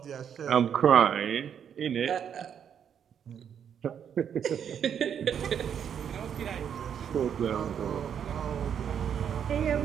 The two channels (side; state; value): left; quieter; 8.3 dB